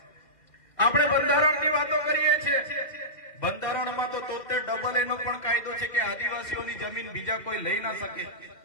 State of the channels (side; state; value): right; late; 2.1 ms